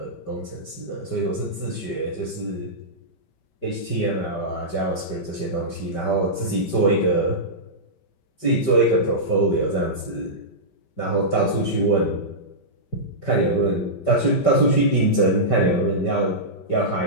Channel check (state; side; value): late; right; 5.2 ms